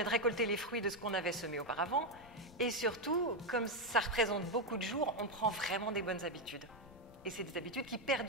de récolter les fruits de ce qu'on avait semé auparavant. Et surtout, comme ça représente beaucoup de jours, on prend vraiment des bonnes habitudes. Et c'est des habitudes qui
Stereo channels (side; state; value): left; noise; rumble, 22 dB below the sound